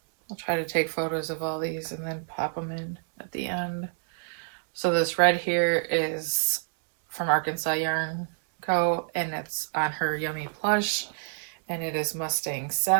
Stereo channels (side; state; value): left; silent; digital silence